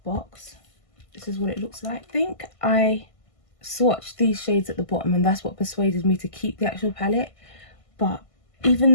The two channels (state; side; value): late; right; 1.5 ms